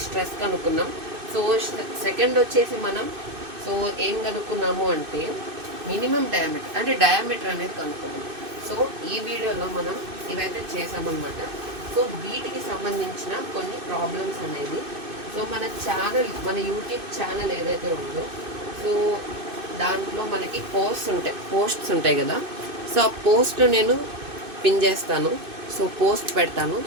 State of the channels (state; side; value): late; left; 2.6 ms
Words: స్ట్రెస్ కనుక్కున్నాం. సో సెకండ్ వచ్చేసి మనం సో ఏం కనుక్కున్నాము అంటే మినిమం డయామీటర్ అంటే డయామీటర్ అనేది కనుక్కున్నాం. సో ఈ వీడియోలో మనం ఇవైతే చేసామన్నమాట. సో వీటికి సంబంధించిన కొన్ని ప్రాబ్లమ్స్ అనేది సో మన ఛానల్ మన యూట్యూబ్ ఛానల్ ఏదైతే ఉందో సో దాంట్లో మనకి పోస్ట్స్ ఉంటాయి కదా. సో ఆ పోస్ట్ నేను పిన్ చేస్తాను, సో పోస్ట్ పెడతాను.